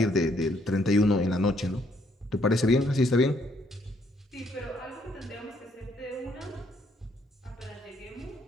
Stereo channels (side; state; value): both; normal; correlation 0.70